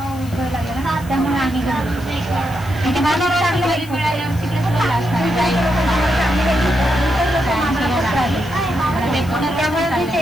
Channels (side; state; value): left; noise; hiss, 20 dB below the sound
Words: लागला ना त्यामुळे आम्ही त्यामुळे मी